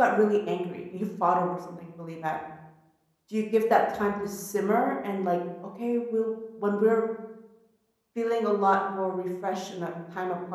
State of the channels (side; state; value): both; identical; correlation 1.00